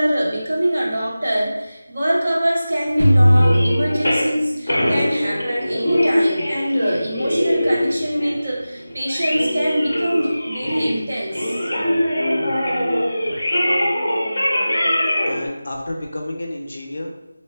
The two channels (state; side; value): inverted; both; correlation -0.96